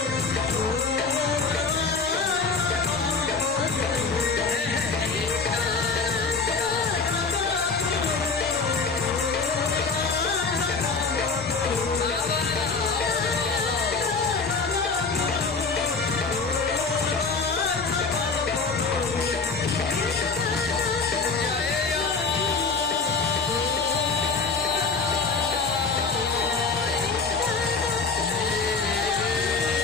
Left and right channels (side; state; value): right; quieter; 4.6 dB